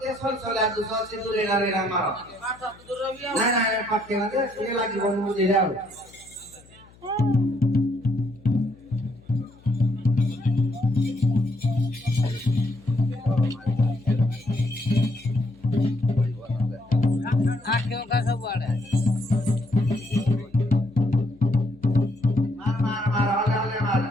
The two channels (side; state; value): left; noise; hum, 26 dB below the sound